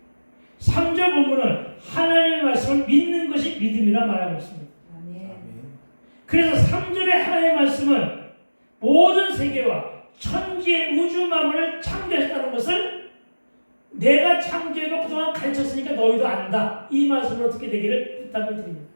3절 본문은 하나님의 말씀을 믿는 것이 믿음이라 말하고 있습니다. 아멘. 그래서 3절의 하나님의 말씀은 모든 세계와 천지의 우주 만물을 창조했다는 것을 내가 창조해서 그동안 가르쳤으니까 너희도 안다. 이 말씀을 어떻게 되기를 부탁을 드립니다.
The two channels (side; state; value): both; inverted; correlation -1.00